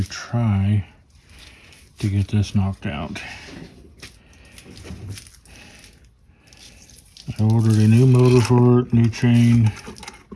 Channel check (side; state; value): both; identical; correlation 1.00